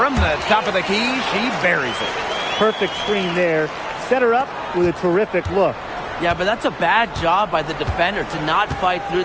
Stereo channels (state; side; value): identical; both; correlation 1.00